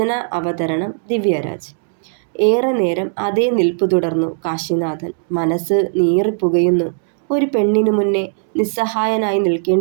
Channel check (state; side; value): silent; left; digital silence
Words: അവതരണം ദിവ്യരാജ്. ഏറെ നേരം അതേ നിൽപ്പു തുടർന്നു കാശിനാഥൻ. മനസ്സ് നീറിപ്പുകയുന്നു. ഒരു പെണ്ണിനു മുന്നേ നിസ്സഹായനായി